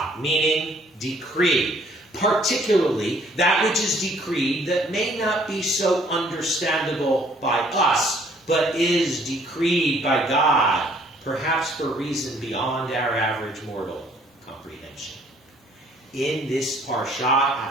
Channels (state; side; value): normal; both; correlation 0.61